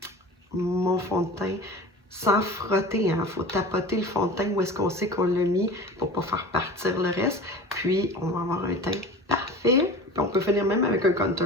fond de teint sans frotter. Il faut tapoter le fond de teint où est-ce qu'on sait qu'on l'a mis pour ne pas faire partir le reste. Puis, on va avoir un teint parfait. Puis, on peut finir même avec un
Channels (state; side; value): normal; both; correlation 0.37